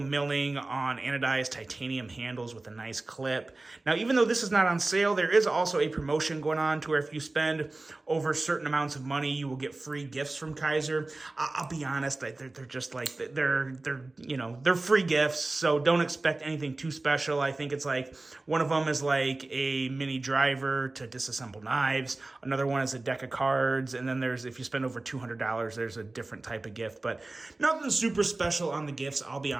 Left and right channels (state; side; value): quieter; left; 3.1 dB